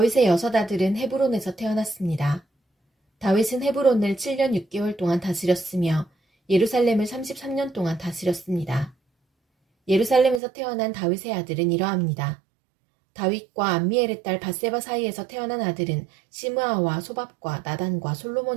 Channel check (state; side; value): drops out; left; at 10.4 s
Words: 여섯 아들은 헤브론에서 태어났습니다. 다윗은 헤브론을 7년 6개월 동안 다스렸으며 예루살렘을 33년 동안 다스렸습니다. 예루살렘에서 태어난 다윗의 아들은 이러합니다. 다윗과 암미엘의 딸 밧세바 사이에서 태어난 아들은 시므아와 소밥과 나단과